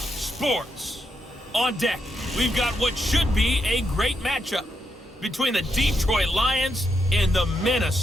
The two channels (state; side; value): normal; both; correlation 0.81